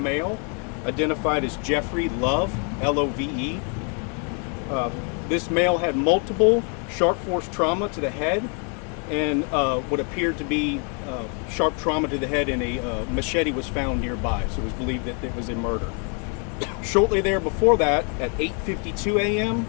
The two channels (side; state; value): right; quieter; 39.2 dB